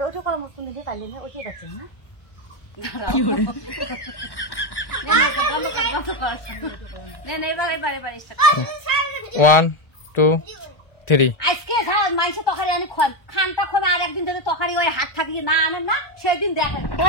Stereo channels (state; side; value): late; right; 1.1 ms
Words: ওটা করা মস্ত নিজে কাটলেন না, ওটাই যাচ্ছেন না। বন্ধ কর এবার start কর। 1 2 3 আজকে মাইসে তরকারি আনি খানটা খোমে আর একদিন ধরে তরকারি ওই হাত থাকিয়ে না আনেন না সেদিন দেখেন